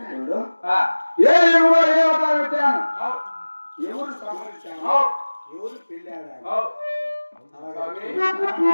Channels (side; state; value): both; inverted; correlation -1.00